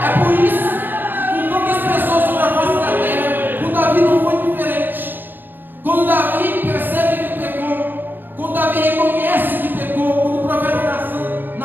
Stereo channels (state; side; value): late; left; 0.093 ms